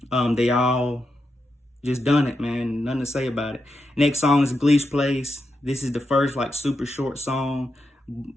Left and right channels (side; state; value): both; normal; correlation 0.86